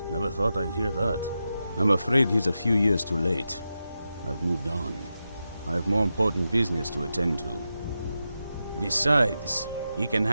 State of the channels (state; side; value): inverted; both; correlation -0.89